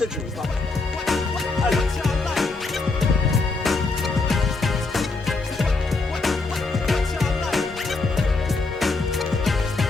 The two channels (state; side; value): quieter; right; 3.7 dB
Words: de genoux, pardon. Allez.